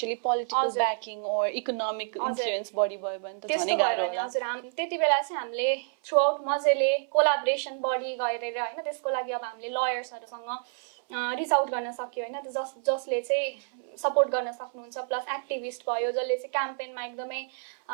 पोलिटिकल ब्याकिङ ओर इकोनोमिक इन्फ्लुएन्स बढी भयो भने त झनै गाह्रो होला. हजुर, त्यति बेला चाहिँ हामीले थ्रु आउट मजाले कोलाबोरेसन बढी गरेर होइन, त्यसको लागि अब हामीले लयर्सहरूसँग रिच आउट गर्न सक्यो होइन, जसले चाहिँ सपोर्ट गर्न सक्नुहुन्छ. प्लस एक्टिभिस्ट भयो जसले चाहिँ क्याम्पेनमा एकदमै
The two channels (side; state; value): left; silent; 59 dB below the other